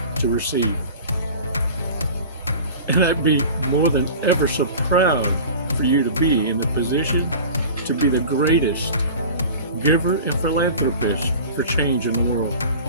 to receive. And I'd be more than ever so proud for you to be in the position to be the greatest giver and philanthropist for change in the world.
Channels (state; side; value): inverted; both; correlation -0.38